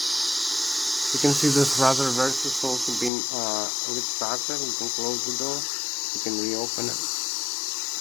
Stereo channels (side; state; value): right; drops out; at 3.1 s